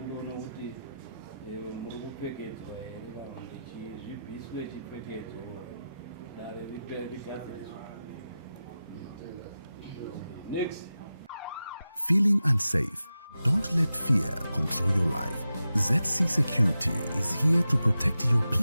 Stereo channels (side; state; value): both; inverted; correlation -0.92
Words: kuti muri kupfekedzwa here kana kuti zvibviswe chipfekedzo dare rigadziriswa. Next. Feeling unsafe? Don't let fear control your life. ZC Security is here to protect your